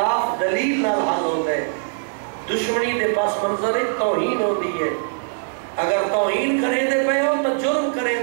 دلیل نال حل ہوتا ہے، دشمنی دے پاس منظر توہین ہوتی ہے۔ اگر توہین کریں دے پے ہو تو جرم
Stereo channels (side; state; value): left; silent; digital silence